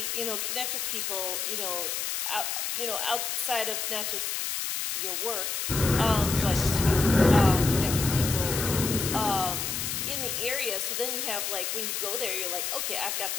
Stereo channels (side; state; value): left; noise; hiss, 2 dB below the sound